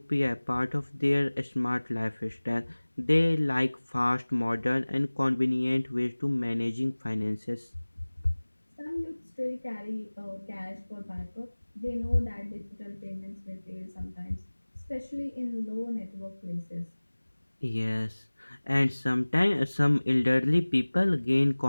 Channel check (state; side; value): inverted; both; correlation -1.00